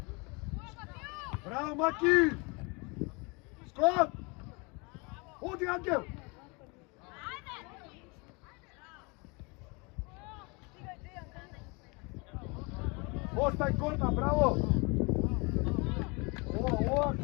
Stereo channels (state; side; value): quieter; right; 29.2 dB